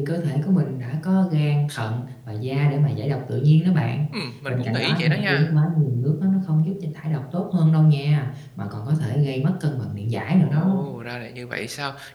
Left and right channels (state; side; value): identical; both; correlation 1.00